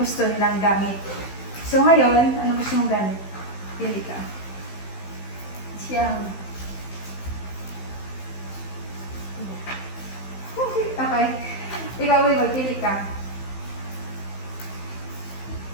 nilang gamit. So ngayon, ano gusto mong gamit? Pili ka. Siyang. Okay. Ikaw, Will, pili ka.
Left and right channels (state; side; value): late; right; 15 ms